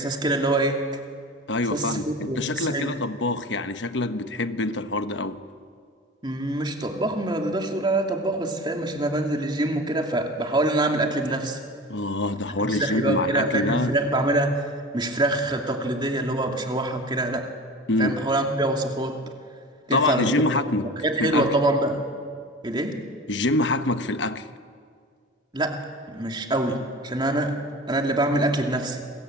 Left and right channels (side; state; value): both; normal; correlation 0.35